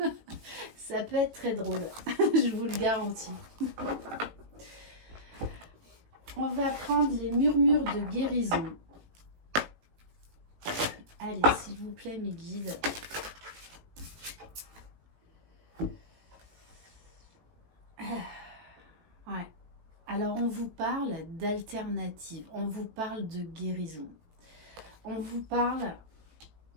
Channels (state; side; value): late; left; 18 ms